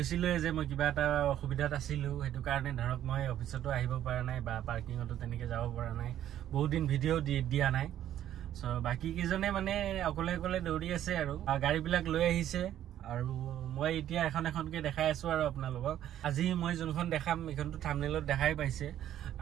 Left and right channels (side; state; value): left; quieter; 11.5 dB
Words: যে মই কিবা এটা অসুবিধাত আছিলো, হেতু কাৰণে ধৰক মই অফিসতো আহিব পৰা নাই বা পাৰ্কিংতো তেনেকে যাব পৰা নাই, বহুত দিন ভিডিও দিয়া নাই। সো বাকি কিজনে মানে অকলে অকলে দৌৰি আছে আৰু গাড়ী বিলাক লৈ আহিছে আৰু মই এতিয়া এখনকে দেখাই আছো আৰু আপোনালোকক। আজি মই যোনখন দেখাম এখনটো থাম্বনেলত দেখাই পাইছে